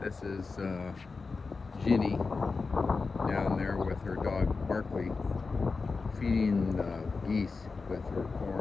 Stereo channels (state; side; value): quieter; right; 4.4 dB